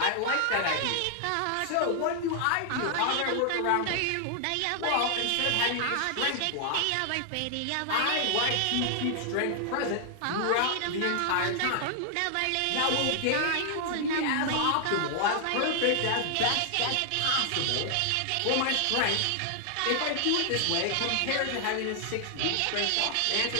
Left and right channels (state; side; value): different; both; correlation 0.00